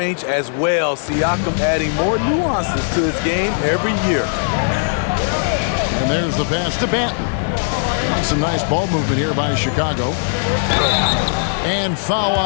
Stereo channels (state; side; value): silent; right; digital silence